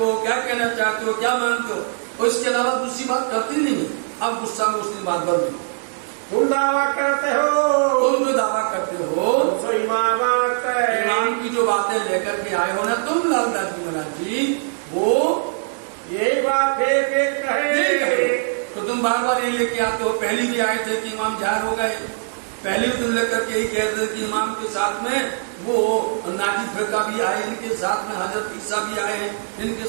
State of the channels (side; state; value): left; silent; digital silence